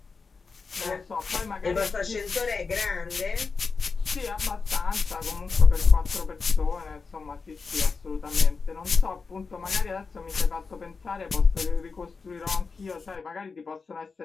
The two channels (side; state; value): right; quieter; 4.7 dB